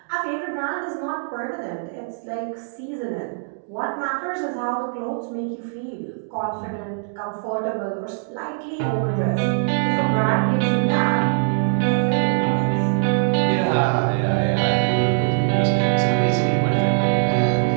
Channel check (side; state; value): left; silent; digital silence